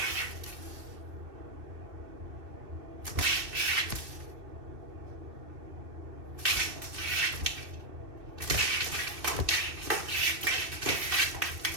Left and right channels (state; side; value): late; left; 2.6 ms